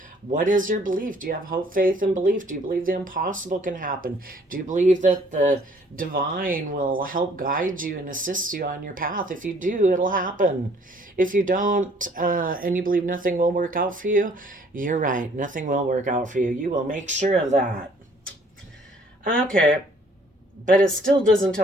what is your belief? Do you have hope, faith, and belief? Do you believe the impossible can happen? Do you believe that the divine will help guide you and assist you on your path? If you do, it'll happen. If you don't, and you believe nothing will work out for you, you're right. Nothing will work out for you. You will make sure of that. Okay. But it still doesn't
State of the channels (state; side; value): normal; both; correlation 0.59